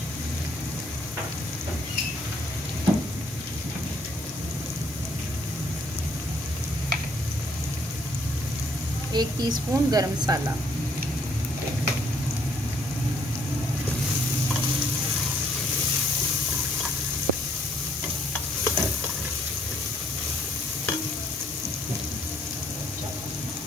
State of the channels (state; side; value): normal; both; correlation 0.68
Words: एक टीस्पून गरम मसाला,